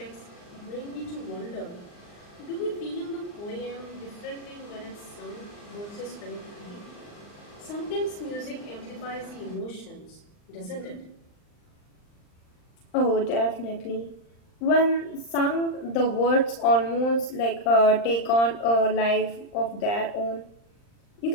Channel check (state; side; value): late; right; 39 ms